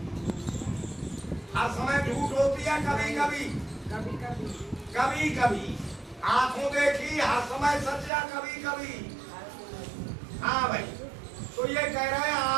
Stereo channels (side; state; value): left; drops out; at 8.1 s